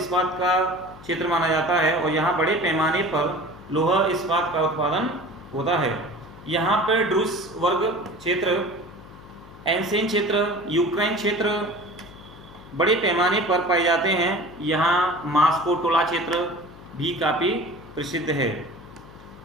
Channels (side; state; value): left; noise; hum, 19 dB below the sound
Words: का क्षेत्र माना जाता है और यहाँ बड़े पैमाने पर लौह इस्पात का उत्पादन होता है। यहाँ पर ड्रूस वर्ग क्षेत्र, एंसेन क्षेत्र, यूक्रेन क्षेत्र बड़े पैमाने पर पाए जाते हैं। यहाँ मास्को टोला क्षेत्र भी काफ़ी प्रसिद्ध है।